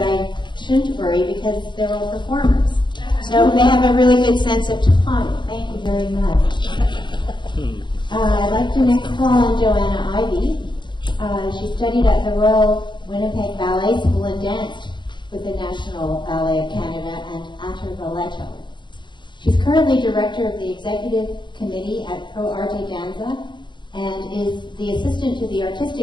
I shouldn't worry because they're all performers. So they have a really good sense of time. Thank you very much. I'd like to next call on Joanna Ivey. She studied at the Royal Winnipeg Ballet School and danced with the National Ballet of Canada and Atter Balletto. She's currently director of the executive committee at Pro Arte Danza and is the assistant to the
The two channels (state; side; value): late; right; 0.22 ms